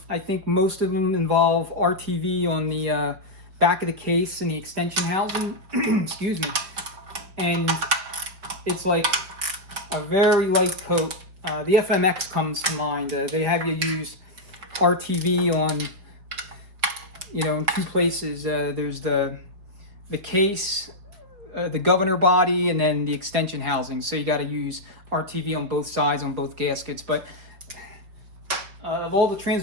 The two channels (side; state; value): left; late; 4.9 ms